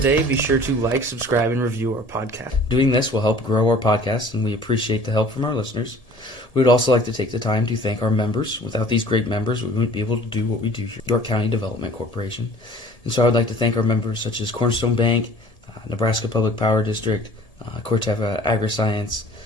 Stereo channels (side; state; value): right; late; 1.7 ms